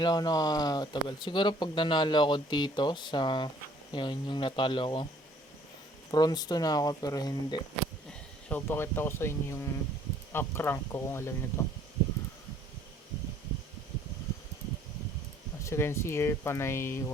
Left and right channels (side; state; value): both; normal; correlation 0.59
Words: lang ako nakatagal. Siguro pag nanalo ako dito sa, yun, yung natalo ko. Bronze 2 na ako pero hindi. So, pakita ko sa inyo yung up rank ko kung alam nito. As you can see here, panay